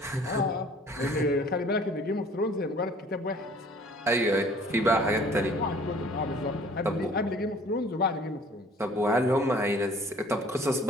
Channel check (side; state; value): both; normal; correlation 0.53